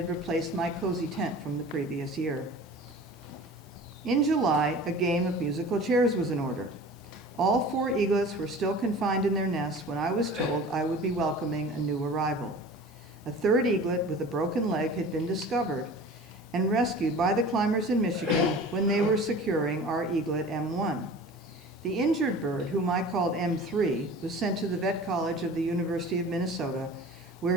replaced my cozy tent from the previous year. In July, a game of musical chairs was in order. All 4 eaglets were still confined in their nests when I was told I would be welcoming a new arrival. A 3rd eaglet with a broken leg had been discovered and rescued by the climbers in Michigan when they were securing our eaglet M1. The injured bird, whom I called M3, was sent to the Vet College of the University of Minnesota, where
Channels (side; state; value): both; normal; correlation 0.40